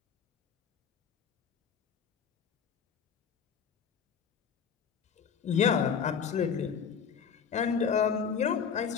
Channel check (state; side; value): quieter; right; 6.9 dB